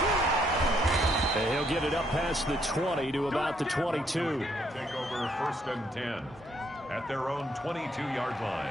And he'll get it up past the 20 to about the 22. Take over 1st and 10. at their own 22-yard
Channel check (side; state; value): both; normal; correlation 0.72